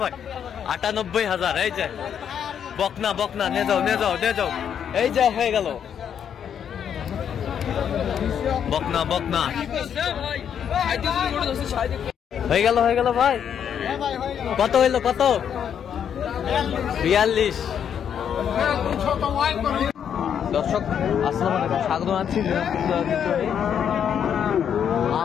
ভাই? 98,000। এই যে বকনা নিয়ে যাও। এই যে হয়ে গেল বকনা হয়ে গেল ভাই। কত হইলো? 42। দর্শক আসসালামু আলাইকুম, স্বাগত জানাচ্ছি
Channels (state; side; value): quieter; right; 8.4 dB